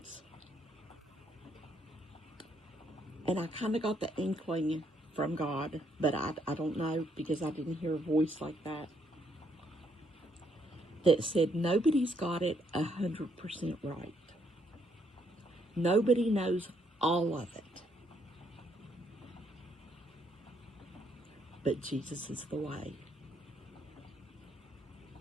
And I kind of got the inkling from God, but I don't know, because I didn't hear a voice like that said nobody's got it 100% right. Nobody knows all of it. But Jesus is the way.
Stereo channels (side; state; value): both; normal; correlation 0.72